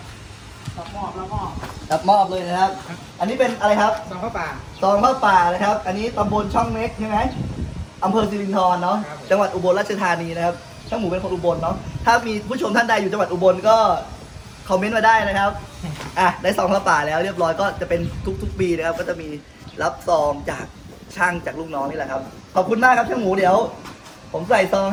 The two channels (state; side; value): identical; both; correlation 1.00